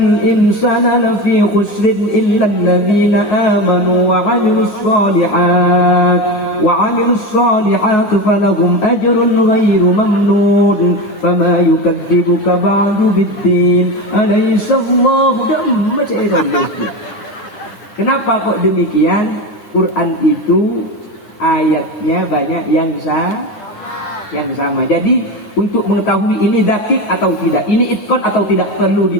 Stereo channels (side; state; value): right; late; 9.8 ms